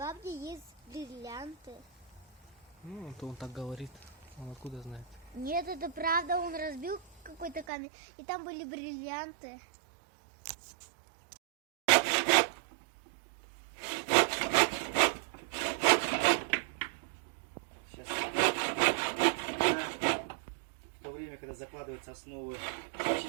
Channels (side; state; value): left; drops out; at 7.7 s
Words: есть бриллианты. Ну, то он так говорит. Он откуда знает? Нет, это правда, он разбил какой-то камень, и там были бриллианты. Сейчас. В то время, когда закладываются основы